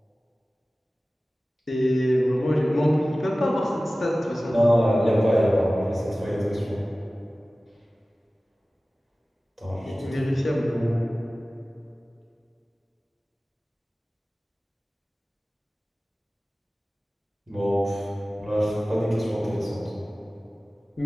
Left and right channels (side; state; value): both; normal; correlation 0.97